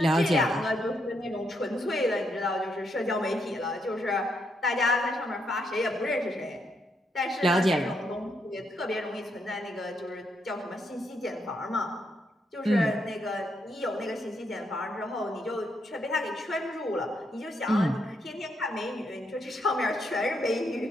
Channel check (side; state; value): both; normal; correlation 0.78